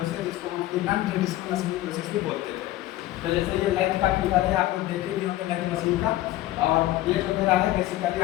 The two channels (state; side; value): quieter; right; 15.5 dB